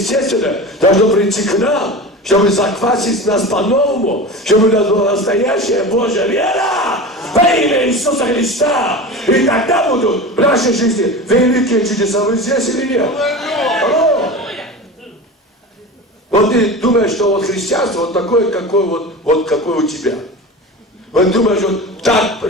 должно прийти к нам, чтобы заквасить нас по-новому, чтобы у нас была настоящая Божья вера во имя Иисуса Христа. И тогда будут в нашей жизни великие чудеса. Вы здесь или нет? Алло. Вот ты думаешь, что вот христианство вот такое, какое у тебя. Вот думаешь, вот так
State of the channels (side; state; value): both; normal; correlation 0.30